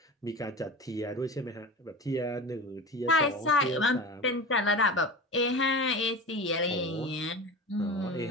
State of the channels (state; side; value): normal; both; correlation 0.30